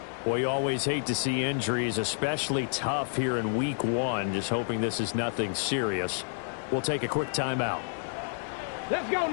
Boy, you always hate to see injuries, especially tough here in week 1. Just hoping this is nothing serious. We'll take a quick timeout. Let's go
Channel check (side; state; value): right; silent; digital silence